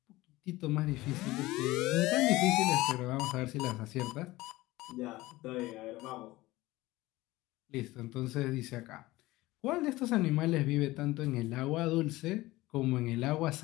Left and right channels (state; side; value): quieter; right; 18.8 dB